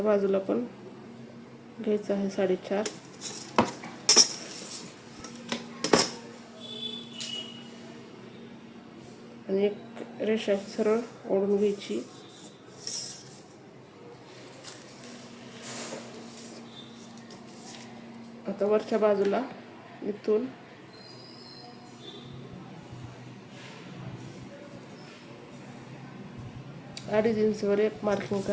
बाजूला पण घ्यायचं आहे 4.5. आणि एक रेषा सरळ ओढून घ्यायची. आता वरच्या बाजूला इथून अडीच इंचवर एक मार्किंग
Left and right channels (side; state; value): both; identical; correlation 1.00